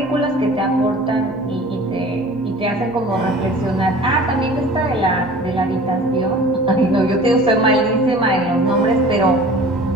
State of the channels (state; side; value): normal; both; correlation 0.44